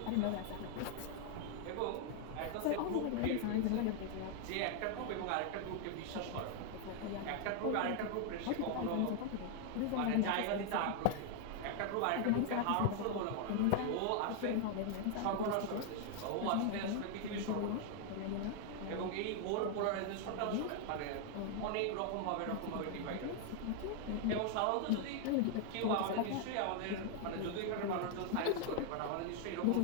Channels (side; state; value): both; different; correlation 0.00